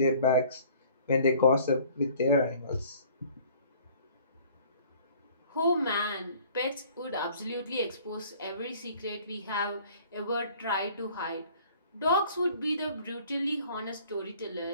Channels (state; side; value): inverted; both; correlation -0.53